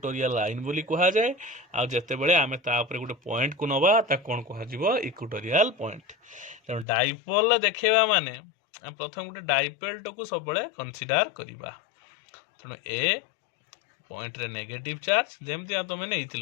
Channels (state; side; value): drops out; right; at 6.9 s